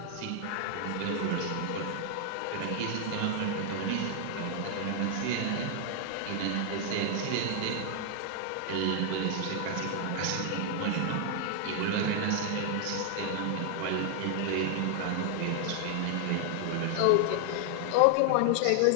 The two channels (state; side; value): different; both; correlation 0.00